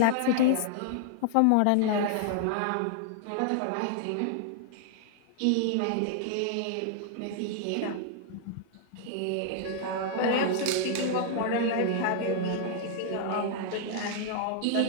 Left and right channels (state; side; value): different; both; correlation 0.00